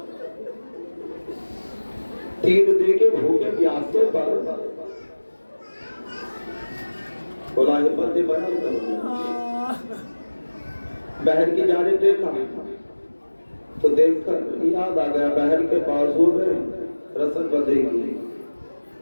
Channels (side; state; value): both; inverted; correlation -1.00